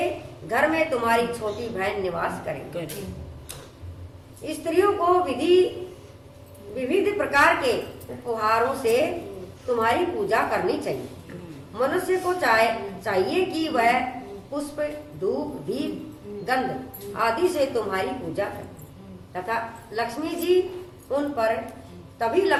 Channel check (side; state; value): both; identical; correlation 1.00